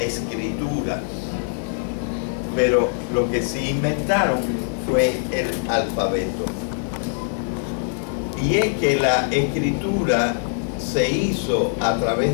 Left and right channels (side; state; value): right; silent; digital silence